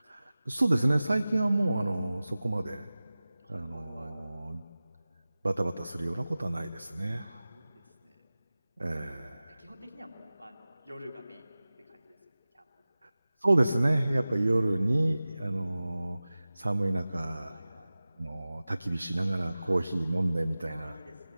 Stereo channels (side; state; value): both; inverted; correlation -0.97